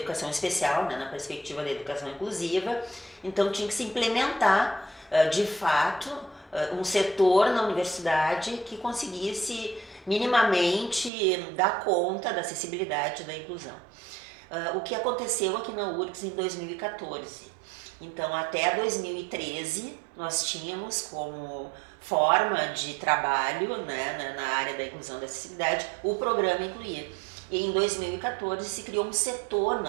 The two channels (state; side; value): drops out; left; at 11.1 s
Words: especial, né? Na perspectiva da educação inclusiva, então tinha que se implementar, de fato, um setor na universidade que conseguisse minimamente dar conta da acessibilidade e da inclusão. O que aconteceu aqui na URGS em 2014. Então, até 2013, nós tínhamos como forma de trabalho, né, na área da inclusão e da acessibilidade o programa Incluir. E em 2014 se criou um setor